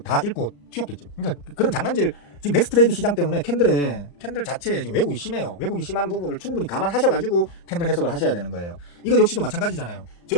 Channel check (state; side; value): late; right; 35 ms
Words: 다 잃고 튀었겠죠. 그러니까 그런 장난질 지금 넥스트레이드 시장 때문에 캔들 자체에 지금 왜곡이 심해요. 왜곡이 심한 부분을 충분히 감안하셔가지고 캔들 해석을 하셔야 되는 거예요. 이거 역시도 마찬가지잖아요.